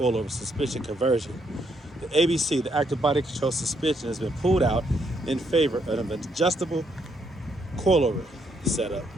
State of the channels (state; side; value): normal; both; correlation 0.74